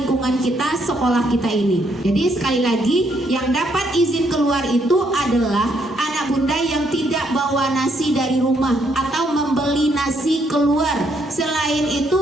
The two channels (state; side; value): normal; both; correlation 0.72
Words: kita, sekolah kita ini. Jadi sekali lagi, yang dapat izin keluar itu adalah anak bunda yang tidak bawa nasi dari rumah atau membeli nasi keluar. Selain